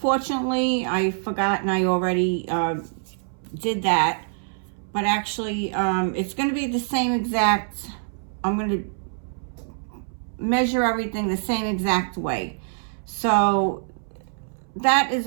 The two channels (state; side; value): silent; left; 62 dB below the other